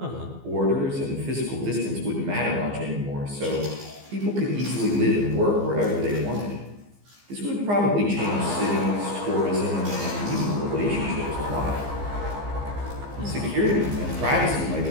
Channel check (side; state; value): left; late; 15 ms